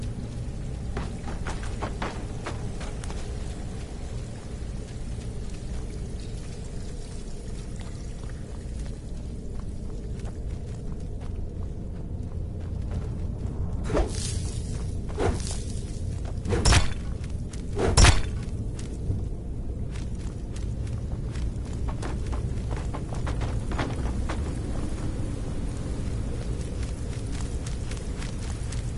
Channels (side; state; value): both; identical; correlation 1.00